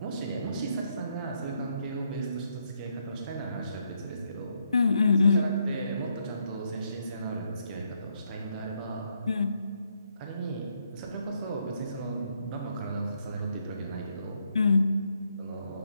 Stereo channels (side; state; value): both; inverted; correlation -0.76